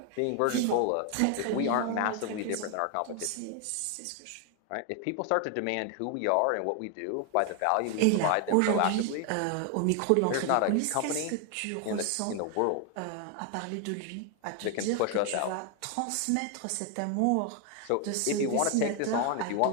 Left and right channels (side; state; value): both; different; correlation 0.01